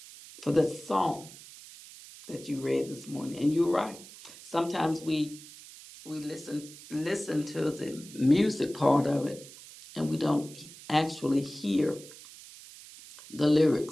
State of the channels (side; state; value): right; noise; hiss, 18 dB below the sound